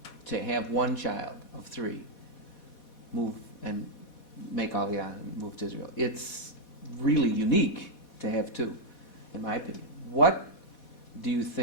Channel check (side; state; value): right; late; 4.1 ms